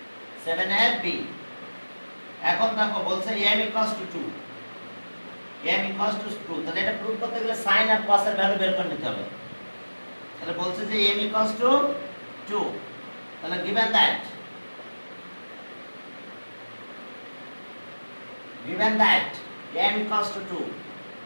7 এর বি এখন দেখো বলছে m equals to 2, m equals to 2। তাহলে এটা প্রুফ করতে গেলে sin আর cos এর ভ্যালু বের করে নিতে হবে। তাহলে বলছে যে m equals to 2, তাহলে given that m equals to 2,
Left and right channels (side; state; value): both; inverted; correlation -1.00